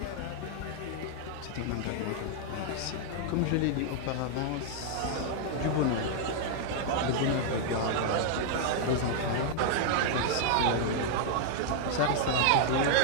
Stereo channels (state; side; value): different; both; correlation -0.01